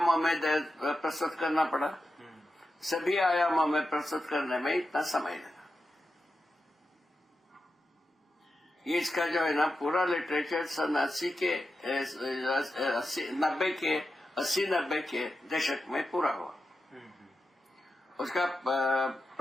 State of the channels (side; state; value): both; normal; correlation 0.90